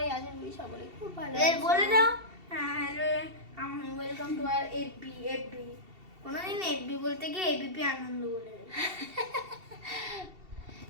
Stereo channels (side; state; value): left; late; 2.7 ms